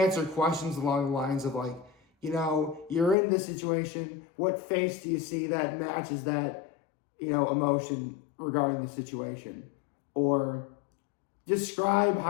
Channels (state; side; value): drops out; right; at 3.2 s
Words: questions along the lines of like, you're in this situation. What face do you see that matches that, emotion regarding the situation? Or describe